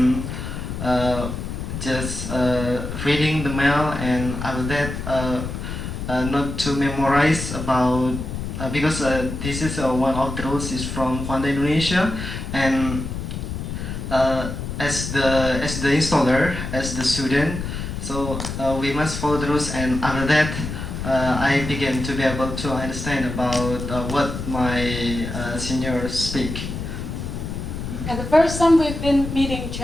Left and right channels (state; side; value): noise; left; rumble, 6 dB below the sound